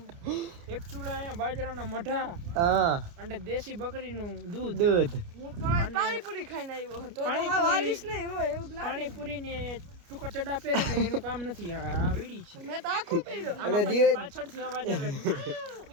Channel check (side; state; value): left; late; 29 ms